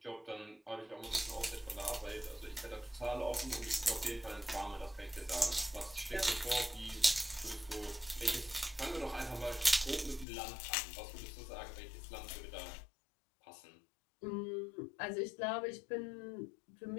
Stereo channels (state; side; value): drops out; right; at 10.2 s